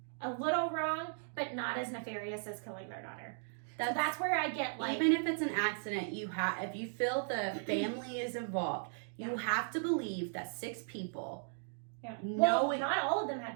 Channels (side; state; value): left; silent; digital silence